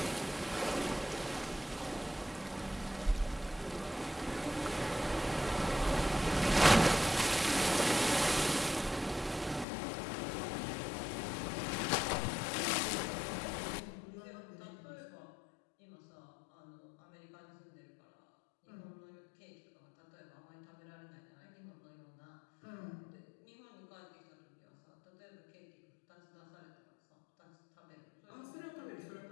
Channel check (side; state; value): right; drops out; at 9.7 s